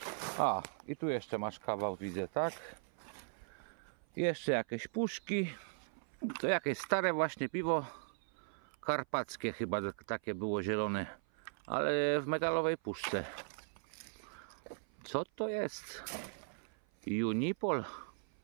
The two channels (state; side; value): silent; left; 52 dB below the other